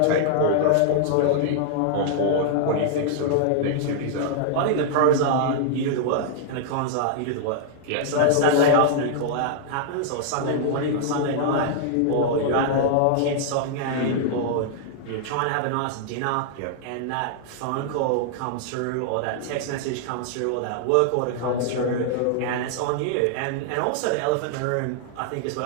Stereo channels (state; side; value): different; both; correlation -0.01